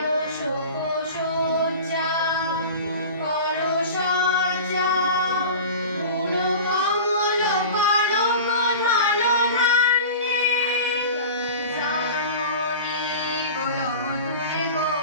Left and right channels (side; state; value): both; inverted; correlation -0.35